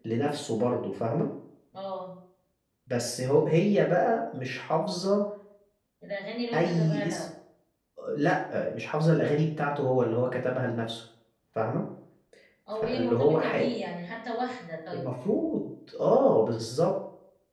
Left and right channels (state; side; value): identical; both; correlation 1.00